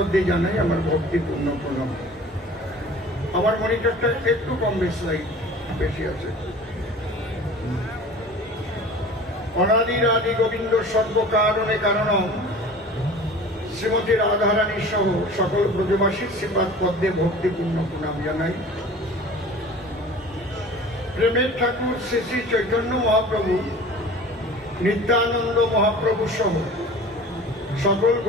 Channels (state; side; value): normal; both; correlation 0.42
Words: জানাই আমার ভক্তিপূর্ণ প্রণাম। আমার মনিটরটা একটু কম বেশি আছে। অনাদির আদি গোবিন্দ সর্বকারণে কারণম শ্রীমতী রাধারানী সহ সকল ব্রজবাসীর শ্রীপাদ পদ্মে ভক্তিপূর্ণ প্রণাম জানাই। প্রেমের ঠাকুর শ্রী শ্রী চৈতন্য মহাপ্রভু, নিত্যানন্দ মহাপ্রভু সহ সকল